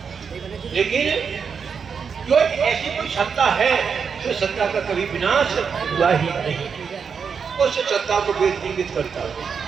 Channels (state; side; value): quieter; left; 6.2 dB